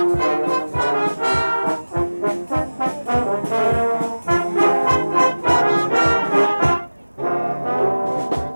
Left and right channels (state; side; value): inverted; both; correlation -1.00